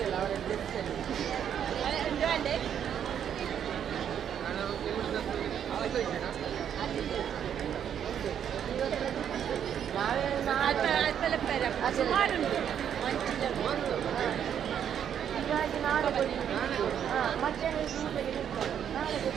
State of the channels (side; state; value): left; quieter; 8.9 dB